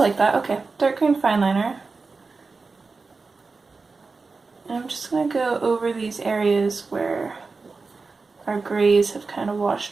that. Okay, dark green fine liner. And I'm just going to go over these areas where our grays have kind of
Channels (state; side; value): quieter; left; 4.2 dB